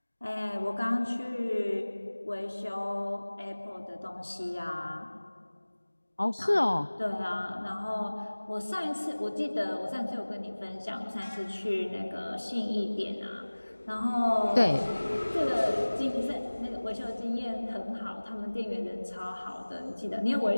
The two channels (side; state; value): both; inverted; correlation -1.00